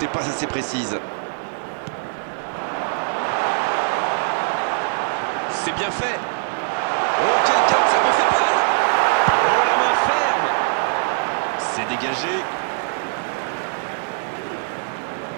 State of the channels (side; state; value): left; silent; 55 dB below the other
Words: pas assez précise. C'est bien fait. Oh, quel cap, ça me fait mal. Oh, la main ferme. C'est dégagé.